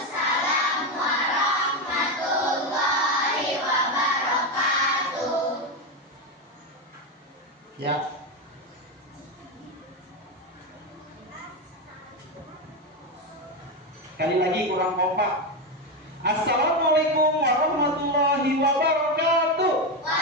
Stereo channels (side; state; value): both; normal; correlation 0.12